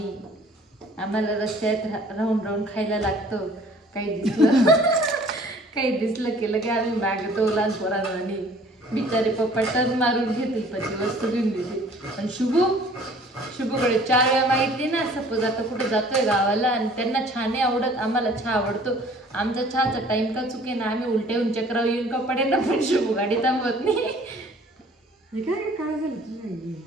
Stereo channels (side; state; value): both; normal; correlation 0.53